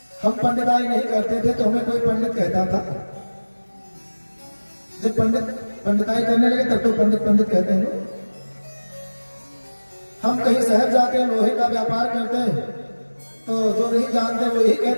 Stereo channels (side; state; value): both; inverted; correlation -1.00